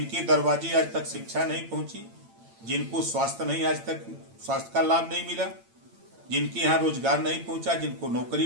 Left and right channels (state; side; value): late; left; 8.8 ms